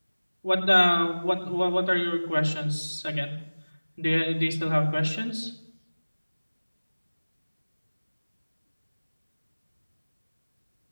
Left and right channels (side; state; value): both; inverted; correlation -1.00